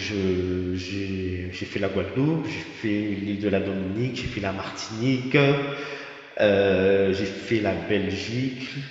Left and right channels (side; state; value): both; identical; correlation 1.00